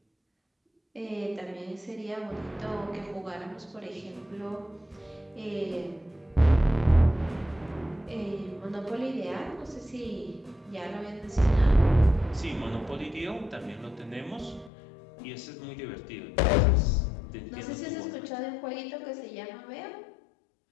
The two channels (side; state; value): right; drops out; at 14.7 s